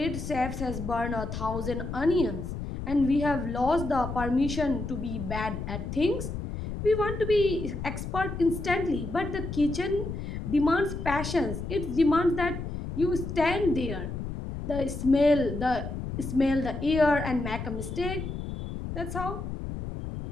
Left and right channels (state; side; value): noise; left; rumble, 6 dB below the sound